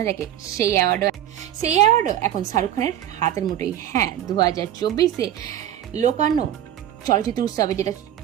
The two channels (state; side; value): quieter; left; 11.4 dB